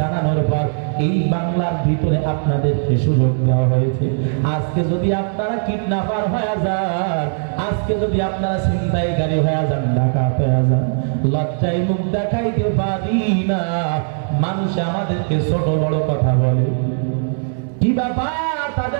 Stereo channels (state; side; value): silent; left; digital silence